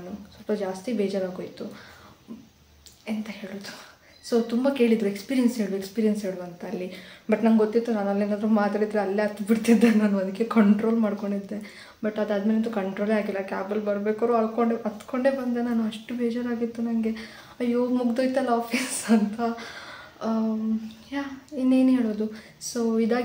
ಸ್ವಲ್ಪ ಜಾಸ್ತಿ ಬೇಜಾರಾಗೋಯಿತು. ಎಂತ ಹೇಳೋದು. ಸೊ ತುಂಬ ಕೇಳಿದರು ಎಕ್ಸ್ಪೀರಿಯನ್ಸ್ ಹೇಳು ಅಂತ ಅಲ್ಲಿ. ಬಟ್ ನಂಗೆ ಗೊತ್ತಿತ್ತು ನಾನು ಅಲ್ಲೇನಾದರೂ ಮಾತಾಡಿದರೆ ಅಲ್ಲೇ ಹತ್ತು ಬಿಡ್ತಿದ್ದೆ ನಾನು. ಅದಕ್ಕೆ ಕಂಟ್ರೋಲ್ ಮಾಡ್ಕೊಂಡಿದ್ದೆ. ಬಟ್ ಅದಾದಮೇಲಂತೂ ಕಂಟ್ರೋಲೇ ಆಗಿಲ್ಲ. ಕ್ಯಾಬಲ್ಲಿ ಬರಬೇಕಾದ್ರು ಹತ್ಕೊಂಡೇ ಬಂದೆ ನಾನು. ಅಷ್ಟು ಬೇಜಾರಾಗಿತ್ತು ನನಗೆ. ಅಯ್ಯೋ ಮುಗ್ದೋಯ್ತಲ್ಲ ಆಫೀಸ್ ಅಂತ. ಇನ್ನೇನು ಹೇಳೋದು. ಸೊ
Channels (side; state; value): both; identical; correlation 1.00